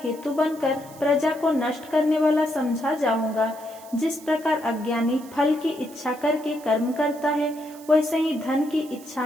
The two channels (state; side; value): noise; right; hiss, 21 dB below the sound